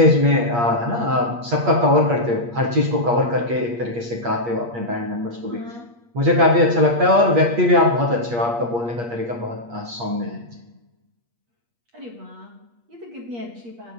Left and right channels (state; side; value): late; left; 8.5 ms